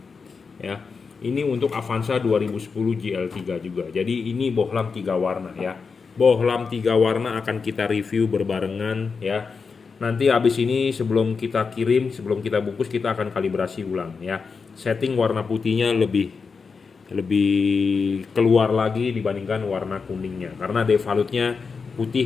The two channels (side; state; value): right; quieter; 5.1 dB